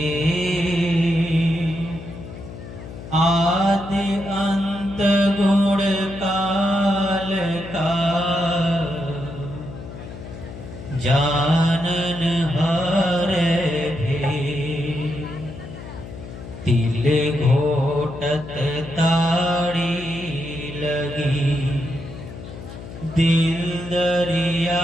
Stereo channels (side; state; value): left; noise; hum, 12 dB below the sound